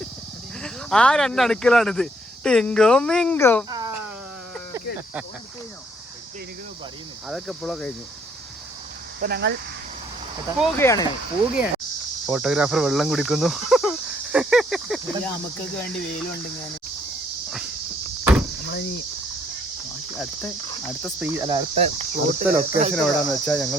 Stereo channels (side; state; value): both; normal; correlation 0.67